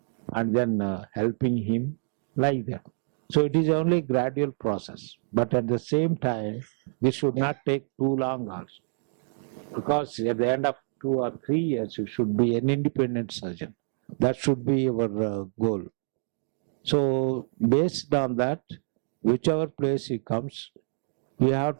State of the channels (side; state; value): left; silent; digital silence